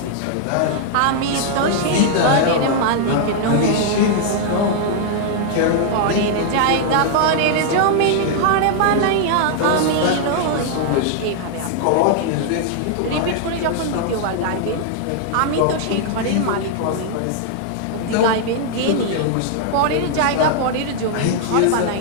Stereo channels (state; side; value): different; both; correlation 0.00